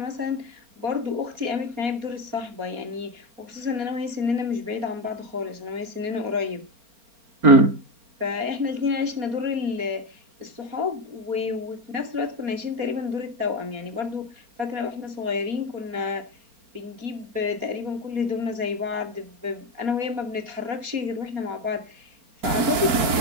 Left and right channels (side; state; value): left; late; 4.2 ms